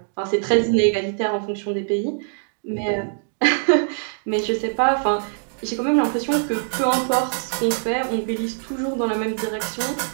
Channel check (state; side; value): silent; left; digital silence